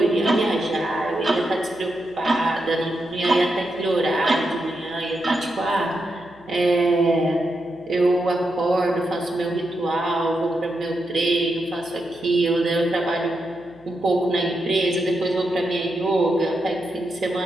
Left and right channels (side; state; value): right; noise; hum, 28 dB below the sound